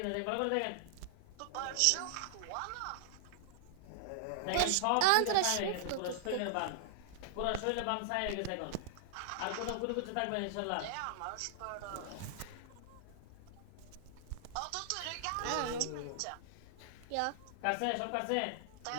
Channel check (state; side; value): different; both; correlation -0.01